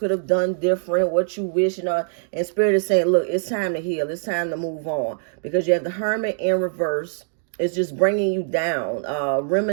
have done different, what you wish, you know. And Spirit is saying, look, it's time to heal. It's time to move on. Because you have the Hermit in reverse. It's just bringing you down.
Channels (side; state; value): left; silent; digital silence